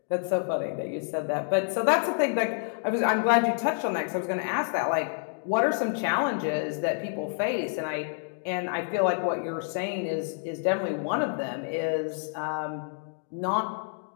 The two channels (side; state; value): right; silent; 59 dB below the other